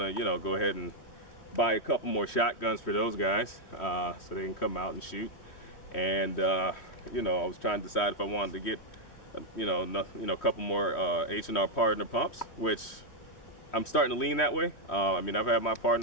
you know, go ahead and buy a couple more shotguns for those guys, so they can come out and shoot. And you know, I was trying to decide if I wanted to get, a couple more H&R partner pumps, which I'm starting to lean that way. I mean, I've had my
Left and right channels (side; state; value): right; late; 3.1 ms